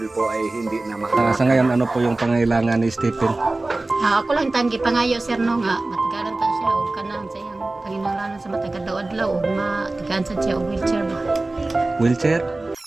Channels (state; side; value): quieter; left; 3.0 dB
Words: po ay hindi na Sa ngayon, ano po yung pangailangan ni Stephen? Ako lang tanggi pangayo sir no nga matagalan ta siya og kanang sa iyang panginahanglan sa matagal daw adlaw ug matigaan sad siya og wheelchair ba. Wheelchair?